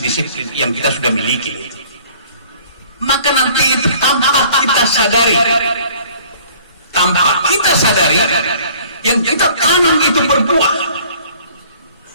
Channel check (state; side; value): inverted; both; correlation -0.53